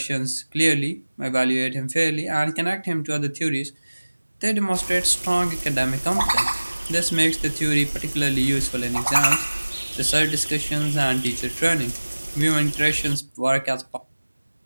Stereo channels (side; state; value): both; inverted; correlation -1.00